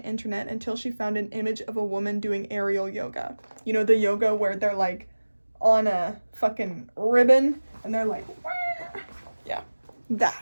internet until she found an image of a woman doing aerial yoga. You know, the yoga where they're like on a fucking ribbon and they're like, wah! Yeah,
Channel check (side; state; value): both; inverted; correlation -1.00